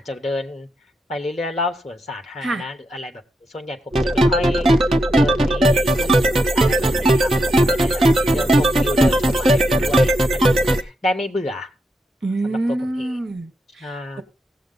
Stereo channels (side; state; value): both; normal; correlation 0.84